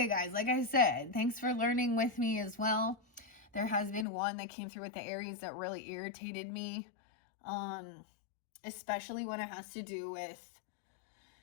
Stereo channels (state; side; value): drops out; right; at 4.0 s